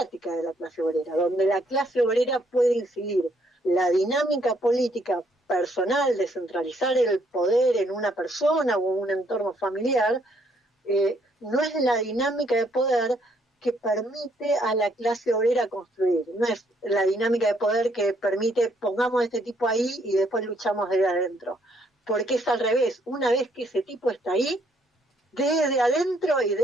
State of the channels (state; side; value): normal; both; correlation 0.69